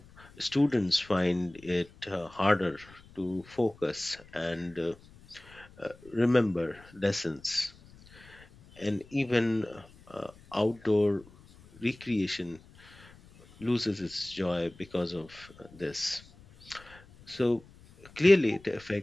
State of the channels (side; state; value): left; noise; rumble, 24 dB below the sound